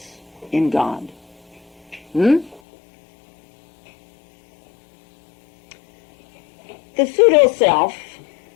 in God. The pseudo-self,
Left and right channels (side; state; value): right; drops out; at 2.6 s